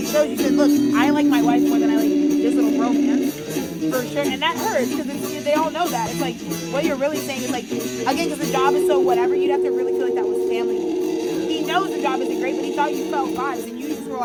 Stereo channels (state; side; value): identical; both; correlation 1.00